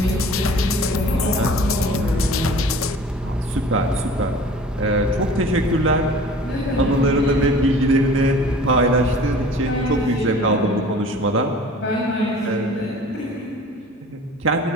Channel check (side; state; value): both; normal; correlation 0.45